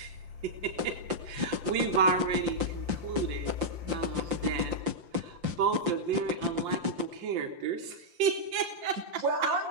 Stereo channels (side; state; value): left; late; 5.8 ms